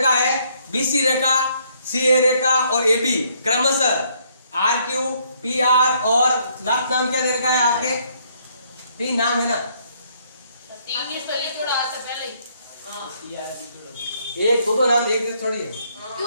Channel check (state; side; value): inverted; both; correlation -0.68